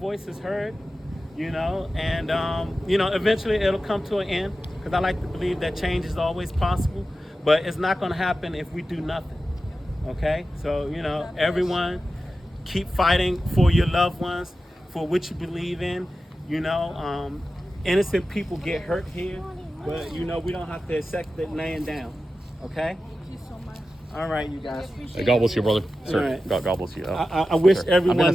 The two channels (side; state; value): both; normal; correlation 0.93